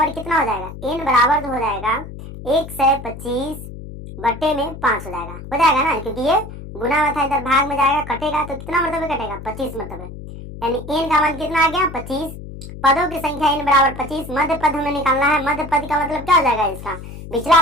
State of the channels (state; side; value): noise; left; hum, 12 dB below the sound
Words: कितना हो जाएगा, एन बराबर तो हो जाएगा 125 बटे में 5 हो जाएगा ना, क्योंकि ये गुना में था, इधर भाग में जाएगा, कटेगा तो कितना मरतबे कटेगा 25 मरतबे, यानी एन का मान कितना आ गया 25। पदों की संख्या n बराबर 25। मध्य पद हमें निकालना है। मध्य पद का मतलब क्या हो जाएगा इसका, पिछला